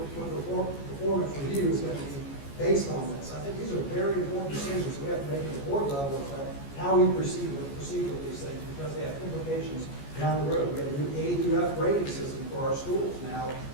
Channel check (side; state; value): right; late; 14 ms